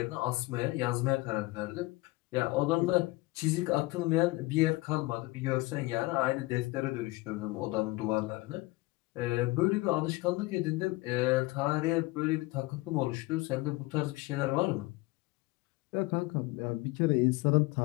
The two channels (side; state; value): right; quieter; 21.7 dB